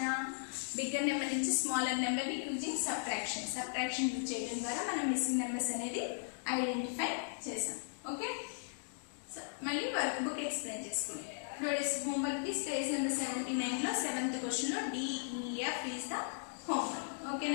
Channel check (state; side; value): silent; right; digital silence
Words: bigger number నుంచి smaller number using subtraction use చేయడం ద్వారా మనం missing numbers అనేది identify చేసాం. Okay, మళ్ళీ వర్క్ బుక్ ఎక్స్ప్లెయిన్ చేసుకున్నాం. Today's homework is page number 79 లో 7th question లో DEF is the homework. Okay